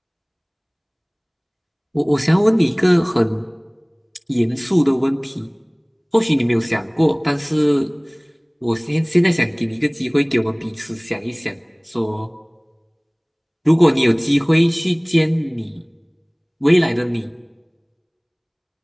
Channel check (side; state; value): both; identical; correlation 1.00